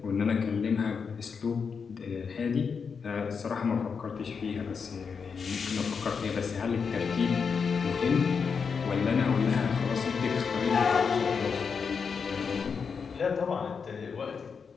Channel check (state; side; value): quieter; right; 5.8 dB